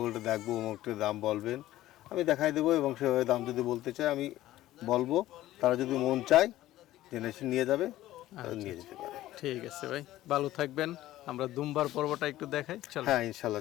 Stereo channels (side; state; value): right; quieter; 15.0 dB